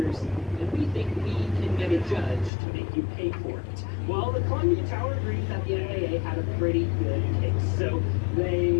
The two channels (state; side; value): drops out; right; at 2.5 s